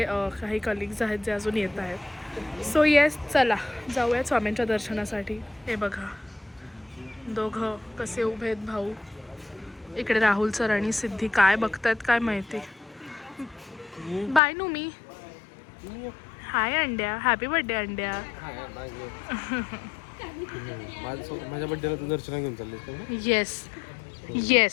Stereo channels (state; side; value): drops out; right; at 14.4 s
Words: काही कलिग्स आहेत जे अजून येत आहेत. सो येस, चला जाऊयात स्वामींच्या दर्शनासाठी. हे बघा दोघं कसे उभे आहेत भाऊ. इकडे राहुल सर आणि सिद्धी काय बघतायत काय माहिती. बाय नू मी. हाय अंड्या, हॅपी बर्थडे अंड्या. माझ्या बड्डेला तू दर्शन घेऊन चालले. Yes